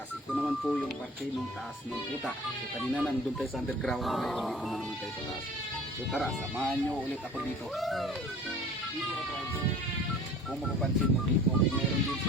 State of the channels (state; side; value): normal; both; correlation 0.46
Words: Ito naman po yung parte ng taas ng puta. So kanina nandun tayo sa underground, ngayon dito na naman tayo sa taas. So tara, samahan nyo ulit ako dito. Dito ka-tribes, kung mapapansin mo dito, meron din